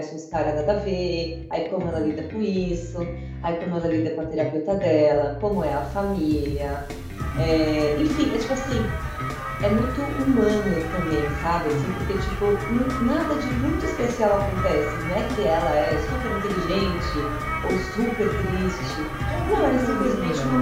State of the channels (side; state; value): both; identical; correlation 1.00